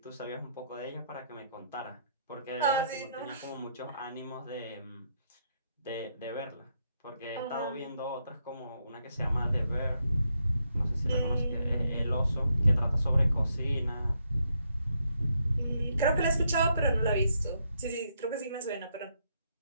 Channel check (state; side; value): inverted; both; correlation -0.77